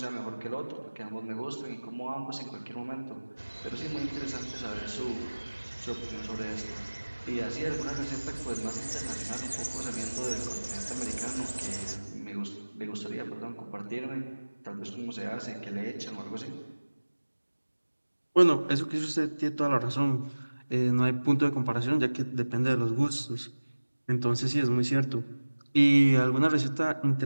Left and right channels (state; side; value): inverted; both; correlation -1.00